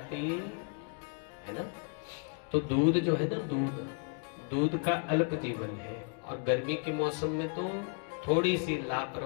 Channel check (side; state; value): right; quieter; 39.0 dB